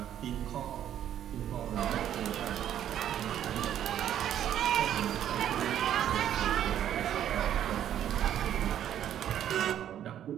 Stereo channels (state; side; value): quieter; left; 10.6 dB